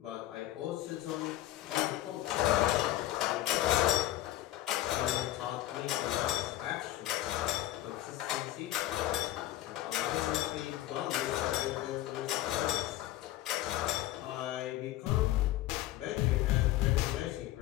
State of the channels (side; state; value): right; quieter; 14.9 dB